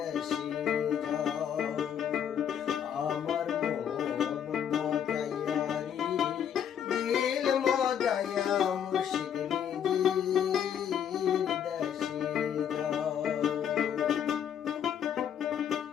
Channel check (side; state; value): right; quieter; 8.9 dB